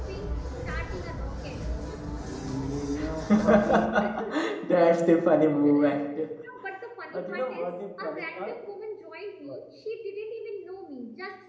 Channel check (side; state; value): both; identical; correlation 1.00